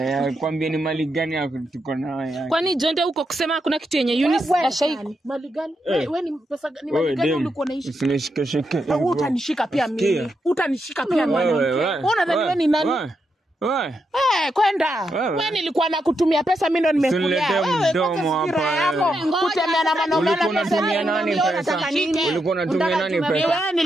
Kwambie ni mali gani yako tuko nayo? kwani Jonte huko kusema hakuna kitu yenye Eunice ashai. Mali gani? Wewe ni pesa ni Wewe mali gani dem, ulikuwa unaishi? usinishike. Wewe utanishika pia mimi. Sikia. Utanishika pia mwanamke. Unadhani wewe ni nani? Wewe. Kwenda. Wewe. Wewe nilikuwa nakutumia pesa, mimi ndo nimekulia. Usiniletee mdomo hapa, Kutembea na mwanaume Ulikuwa unatumia nani pesa? Ulikuwa unatumia nani pesa? Wewe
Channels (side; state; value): both; normal; correlation 0.83